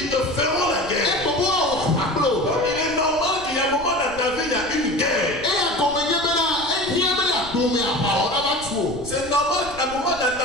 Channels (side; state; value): right; noise; rumble, 16 dB below the sound